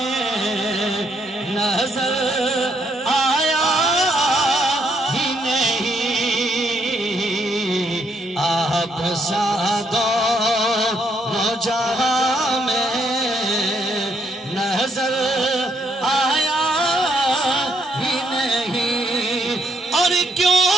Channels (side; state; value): both; normal; correlation 0.73